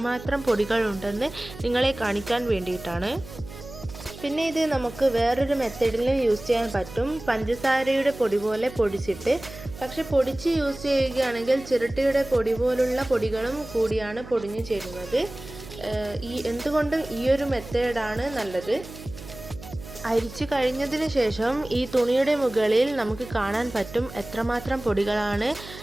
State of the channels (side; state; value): right; noise; hum, 15 dB below the sound